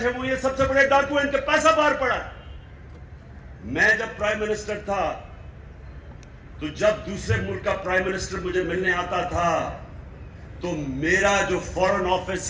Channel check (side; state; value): both; identical; correlation 1.00